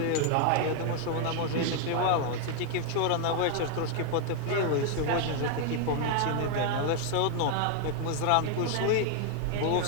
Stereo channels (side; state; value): both; different; correlation 0.00